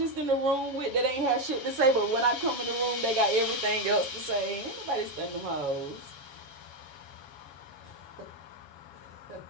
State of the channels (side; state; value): left; late; 7.1 ms